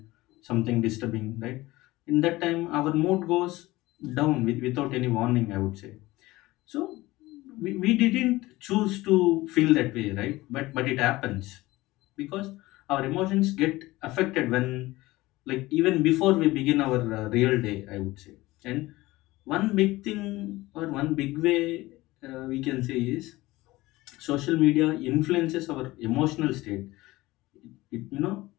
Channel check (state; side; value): quieter; right; 19.1 dB